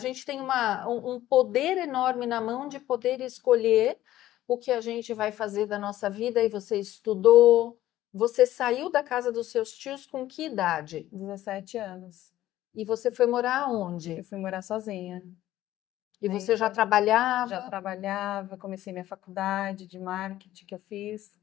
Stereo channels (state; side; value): quieter; right; 14.1 dB